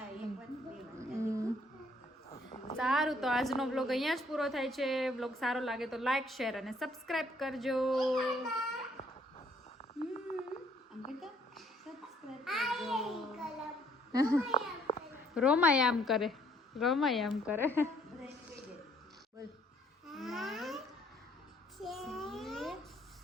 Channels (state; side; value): normal; both; correlation 0.64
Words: એક વાર બે વાર. સારું તો આજનો વ્લોગ અહીંયા જ પૂરો થાય છે. વ્લોગ સારો લાગે તો લાઈક શેર અને સબસ્ક્રાઇબ કરજો. આમ કરતા સબસ્ક્રાઇબ કરજો. રોમાય આમ કરે. રોમાય આમ કરે. બોલ.